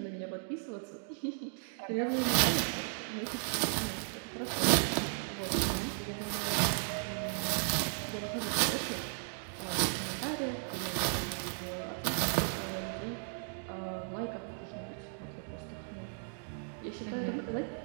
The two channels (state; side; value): silent; left; 54 dB below the other